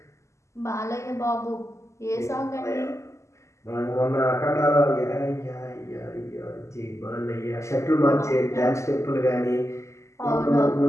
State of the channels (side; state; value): right; late; 0.14 ms